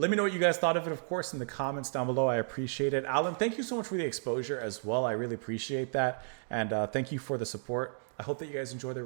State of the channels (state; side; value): silent; left; digital silence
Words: me know what you guys thought of it, of course, in the comments down below. I appreciate it. Alan, thank you so much for the exposure as well. I really appreciate that, and thank you for the support. I hope that you guys enjoy the